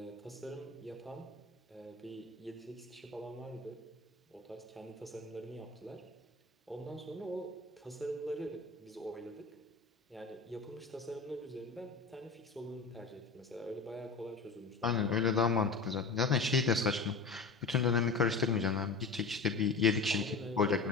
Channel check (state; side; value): quieter; right; 4.3 dB